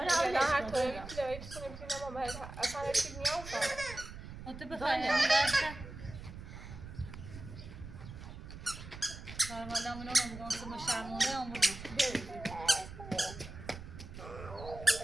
هر طوری که داری بتونیم ما باید اصلا هیچ نیاز تو بخوای می‌رسه حالا منو میگم که ما شرمنده آموزش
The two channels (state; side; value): noise; right; rumble, 12 dB below the sound